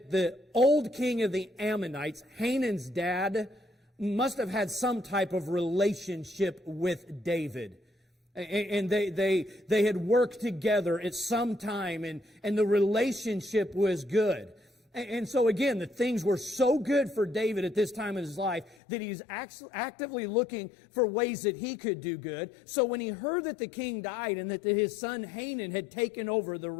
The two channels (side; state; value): right; drops out; at 18.8 s